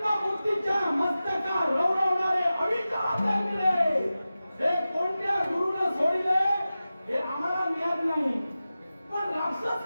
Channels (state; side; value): inverted; both; correlation -0.95